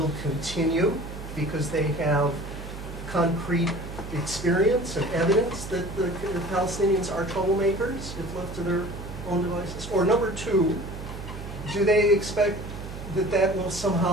continue because they have concrete experience and evidence that the Palestinians are troublemakers if left to their own devices? Or number two, do they expect that will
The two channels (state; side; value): noise; right; hum, 10 dB below the sound